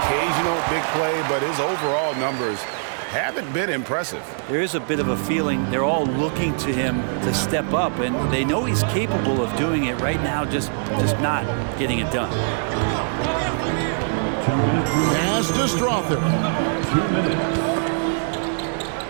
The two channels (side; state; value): left; silent; digital silence